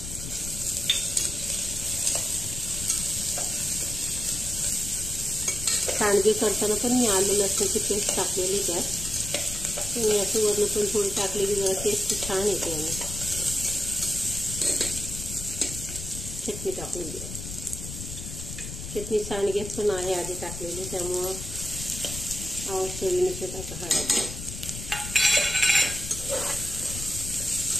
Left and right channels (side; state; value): left; noise; rumble, 8 dB below the sound